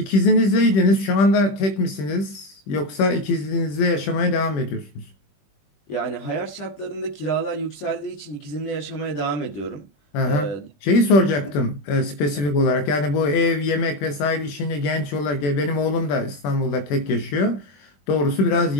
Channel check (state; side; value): late; right; 20 ms